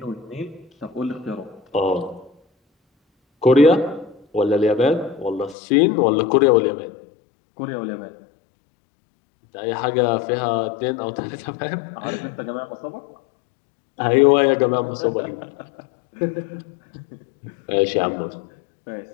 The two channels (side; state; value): right; drops out; at 5.6 s